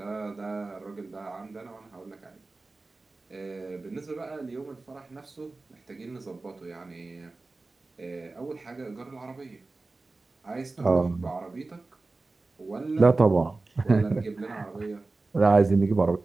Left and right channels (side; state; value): left; quieter; 3.5 dB